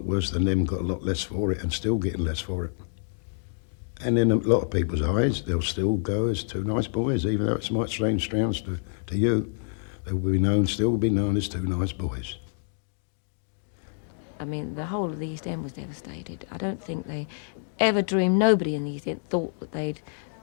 worse than them, got a lot less for it and still getting less for it. And in a lot of people's eyes, they'll still go as two nice boys, even though it might strange sounds to you. They will be known, still be known as two nice boys. I mean, the whole of the East End was devastated. I don't think they ever dreamed, nobody in the East End thought that they'd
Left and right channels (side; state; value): right; silent; digital silence